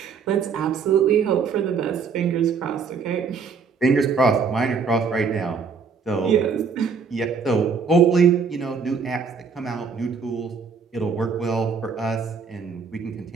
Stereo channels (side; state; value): left; quieter; 5.6 dB